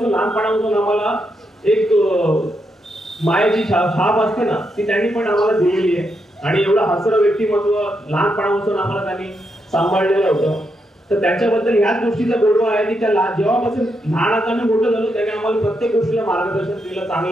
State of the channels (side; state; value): both; normal; correlation 0.81